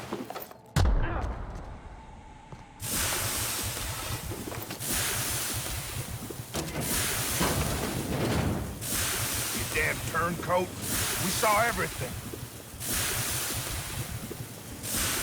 Damn turncoat. We saw everything.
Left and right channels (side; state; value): both; identical; correlation 1.00